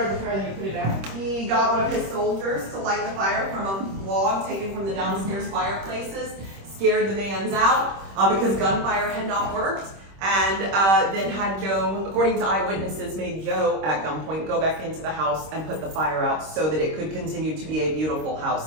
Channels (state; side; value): late; left; 26 ms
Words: the fire, then he put it out. he got one of his soldiers to light the fire from a log taken from the downstairs fireplaces, scared the Vanns out because gunfire had not worked, and then had Joe, according to eyewitnesses, made Joe at gunpoint go back into the house and put the fire out so that it could continue to be a beautiful